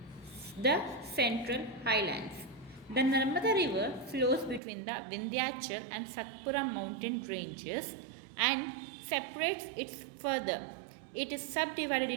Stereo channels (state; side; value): drops out; left; at 4.6 s